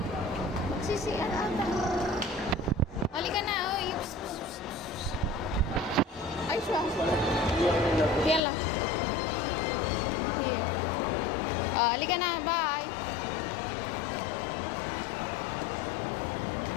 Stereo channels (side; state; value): right; drops out; at 8.4 s